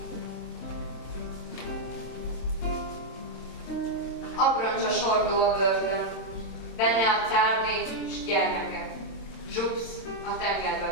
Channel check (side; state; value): right; late; 26 ms